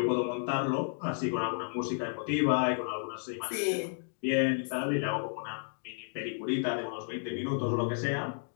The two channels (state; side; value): silent; right; digital silence